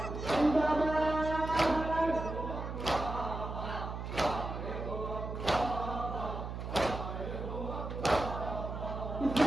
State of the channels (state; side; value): noise; right; hum, 6 dB below the sound